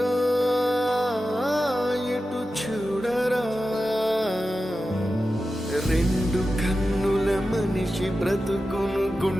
ఇటు చూడరా, రెండు కన్నుల మనిషి బ్రతుకును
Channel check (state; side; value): normal; both; correlation 0.92